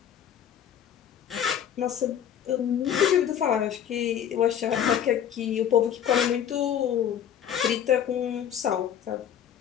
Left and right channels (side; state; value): right; quieter; 9.4 dB